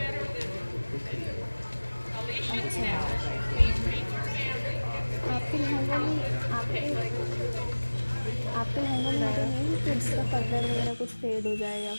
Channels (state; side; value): inverted; both; correlation -1.00